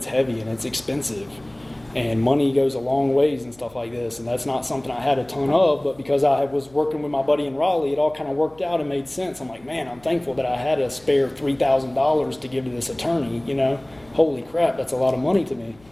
heavy, and it's expensive, and money goes a long ways and stuff like this, and that's not something I had a ton of, but because I was working with my buddy in Raleigh, it all kind of worked out and made sense. I'm like, man, I'm thankful that I had a spare $3,000 to give to this attorney, Holy crap, that's a lot of money to me.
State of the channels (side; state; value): left; noise; hum, 27 dB below the sound